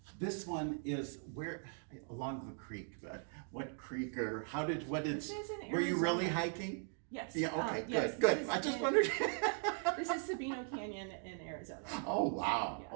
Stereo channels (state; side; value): silent; left; 52 dB below the other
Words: this one is where, along the creek, but what creek, or what did, This is in were you really Arizona. hiking? Yes. Yeah, okay, yes, good. this I is just in- wondered. This is Sabino Canyon in Arizona. Oh, wow. Yeah.